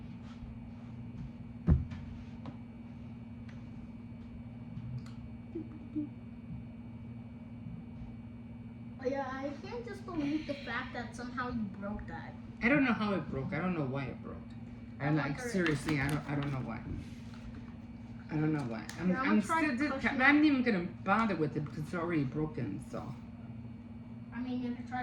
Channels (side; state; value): both; identical; correlation 1.00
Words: Oh, yeah, I can't just believe the fact that somehow you broke that. I don't know how it broke. I don't know why it broke. And like wonder- seriously, I don't know why. I don't know why. I'm try still. pushing I'm not even gonna bother with it because it's already broken. So I mean, you could